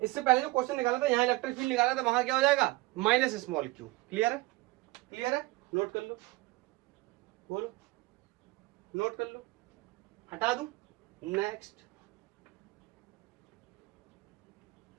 इससे पहले जो क्वेश्चन निकाला था, यहाँ इलेक्ट्रिक फील्ड निकाला था, वहां क्या हो जाएगा, माइनस स्मॉल क्यू। क्लियर है, नोट कर लो, बोलो नोट कर लो, हटा दूं, नेक्स्ट।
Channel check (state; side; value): quieter; left; 21.4 dB